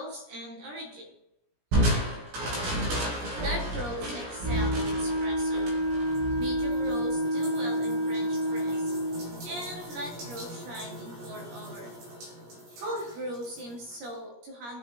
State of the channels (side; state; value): left; late; 17 ms